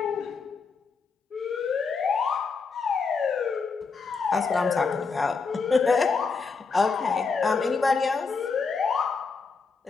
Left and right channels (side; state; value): right; quieter; 4.9 dB